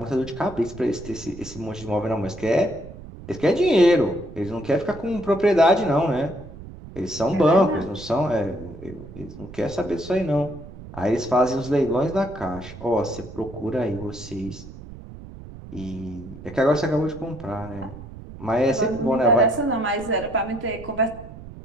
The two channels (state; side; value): noise; right; rumble, 15 dB below the sound